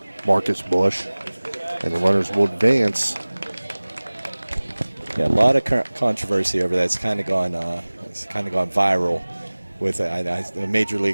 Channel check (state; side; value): inverted; both; correlation -1.00